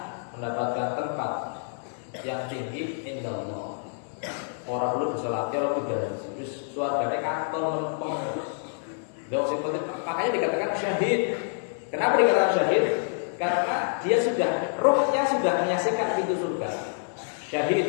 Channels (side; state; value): right; silent; digital silence